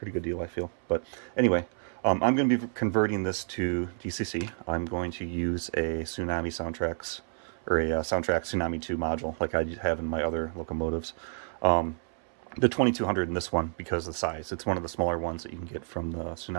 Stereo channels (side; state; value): left; silent; 58 dB below the other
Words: good deal, I feel. But anyway, I'm going to be converting this to DCC. I'm going to use a Tsunami Soundtraxx or a Soundtraxx Tsunami2 module like I have in my other locomotives. The 2200 in this one because of the size. It's one of the smaller ones that you can get from the